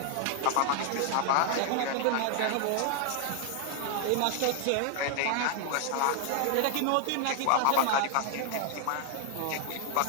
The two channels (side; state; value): both; different; correlation 0.00